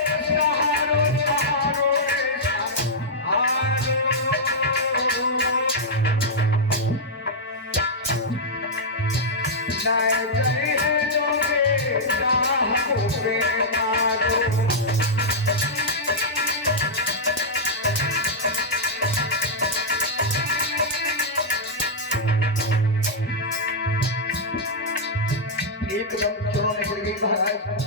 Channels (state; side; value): normal; both; correlation -0.08